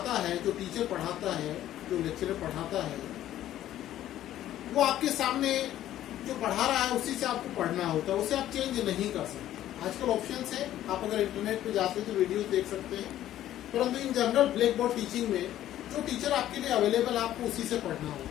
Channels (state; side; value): quieter; right; 12.7 dB